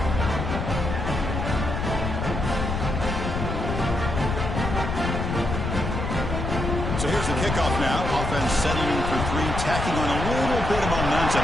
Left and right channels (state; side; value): noise; left; rumble, 3 dB below the sound